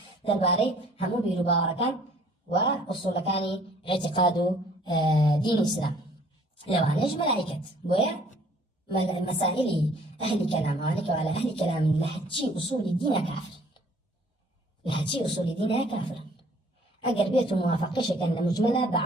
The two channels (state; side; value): normal; both; correlation 0.57